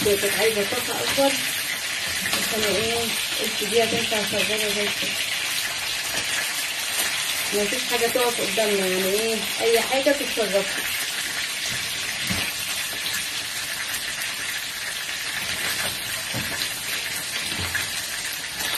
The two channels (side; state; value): both; identical; correlation 1.00